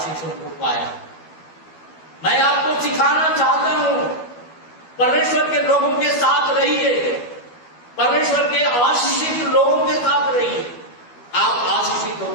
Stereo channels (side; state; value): right; late; 12 ms